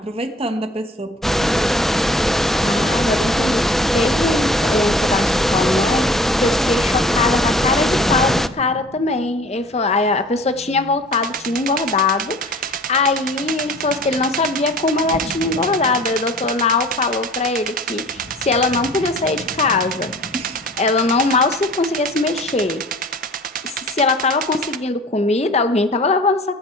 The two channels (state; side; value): normal; both; correlation 0.47